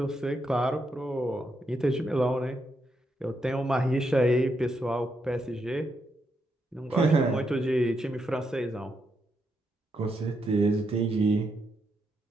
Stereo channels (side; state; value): both; normal; correlation 0.81